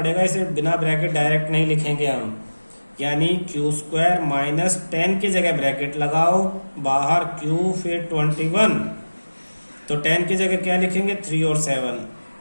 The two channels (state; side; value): inverted; both; correlation -1.00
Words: इसे बिना ब्रैकेट डायरेक्ट नहीं लिखेंगे हम। यानी क्यू स्क्वायर माइनस 10 की जगह ब्रैकेट लगाओ, बाहर क्यू फिर 21, तो 10 की जगह क्या लिखेंगे 3 और 7,